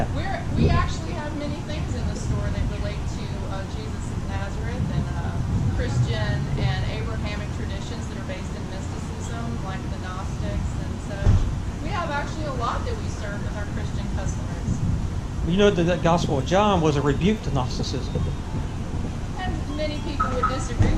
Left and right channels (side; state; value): both; identical; correlation 1.00